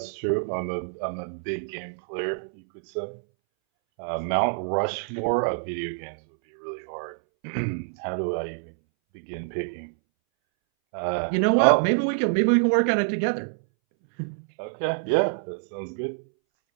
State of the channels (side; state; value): left; silent; 61 dB below the other